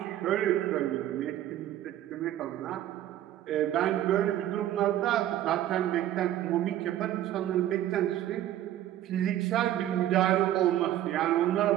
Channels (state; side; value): quieter; left; 12.7 dB